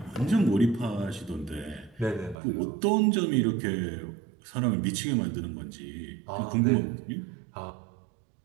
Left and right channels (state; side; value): drops out; left; at 2.4 s